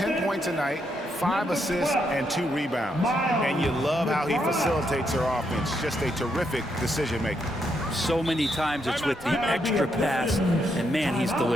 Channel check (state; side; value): normal; both; correlation 0.78